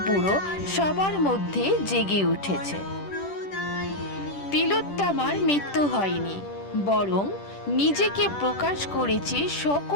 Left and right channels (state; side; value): late; right; 10 ms